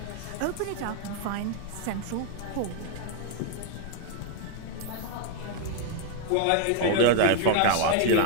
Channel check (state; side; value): different; both; correlation 0.00